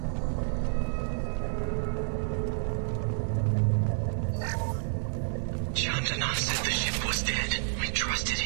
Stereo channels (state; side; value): silent; left; digital silence